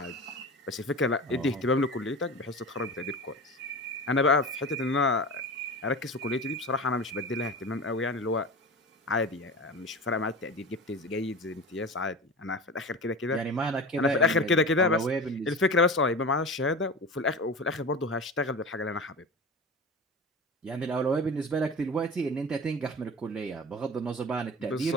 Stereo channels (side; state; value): both; normal; correlation 0.31